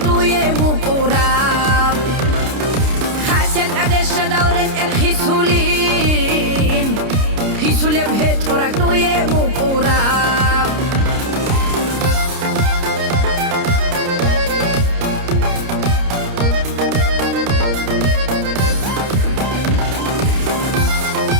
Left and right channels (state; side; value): late; left; 30 ms